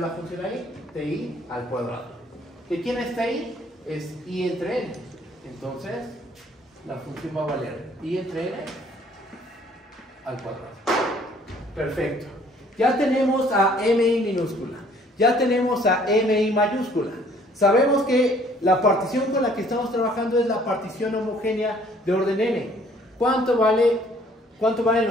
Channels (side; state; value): both; normal; correlation 0.59